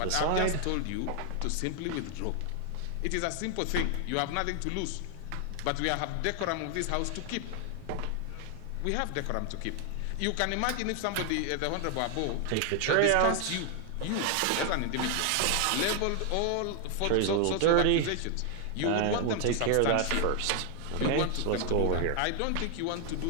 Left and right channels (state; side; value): different; both; correlation 0.00